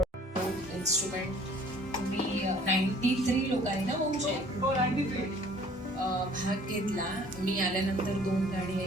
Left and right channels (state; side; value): normal; both; correlation 0.54